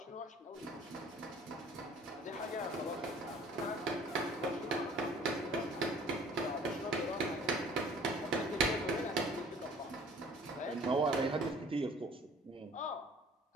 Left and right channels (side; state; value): both; normal; correlation 0.52